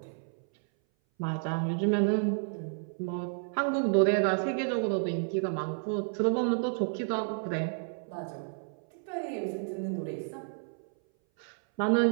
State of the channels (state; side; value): silent; left; 57 dB below the other